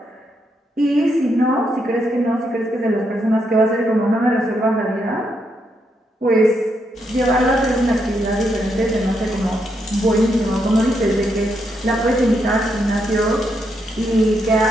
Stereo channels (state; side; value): normal; both; correlation 0.79